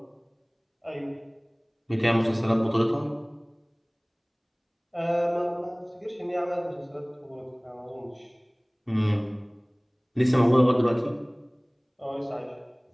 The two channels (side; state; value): both; identical; correlation 1.00